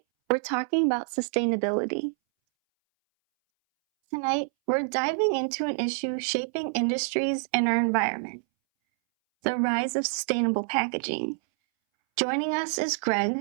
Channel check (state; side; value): silent; left; 60 dB below the other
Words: we're talking about sustainability. Tonight, we're diving into an issue shaping industries and our environment, the rise of sustainable packaging. Joining us is